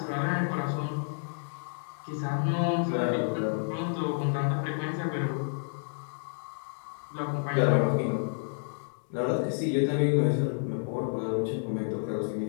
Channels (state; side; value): silent; right; digital silence